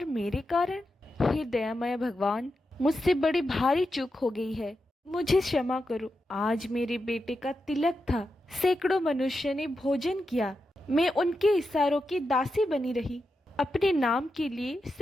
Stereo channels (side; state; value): both; normal; correlation 0.88